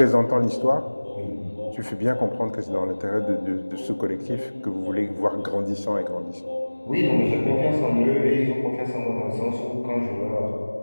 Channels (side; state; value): both; inverted; correlation -1.00